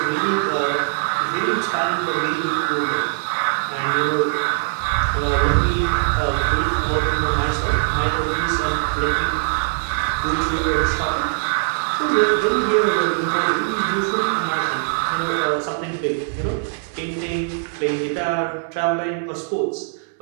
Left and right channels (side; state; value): left; silent; 65 dB below the other